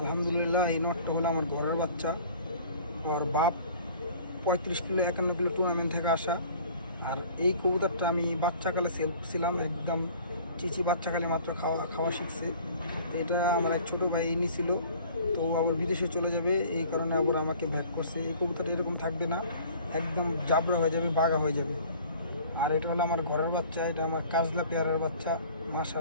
এই নটটা হলো আমার ঘরের বাচ্চা। ওর বাপ 35 কিলো 51 কিলো টুর্নামেন্ট থেকে আসা। আর এই কবুতরটা আমি বাচ্চাকালে সেল করছিলাম, একদম চিচি বাচ্চাকালে মাত্র খাওয়া খাওয়া শিখছে। তো এটা আমার এক ছোটো ভাই নিছিল, তো আবার বিদেশে চলে যাবে, এই কারণে আবার আমাকে ব্যাক করছে। এই কবুতরটা এরকম থাকবে না, একদম জাবরা হয়ে যাবে, বাঘা হয়ে যাবে। আর এটা হলো আমার ঘরের বাচ্চা, এটা আমার কাজলা পেয়ারের বাচ্চা,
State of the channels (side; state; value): both; inverted; correlation -0.48